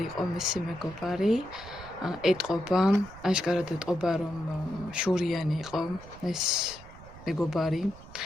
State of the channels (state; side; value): noise; right; rumble, 18 dB below the sound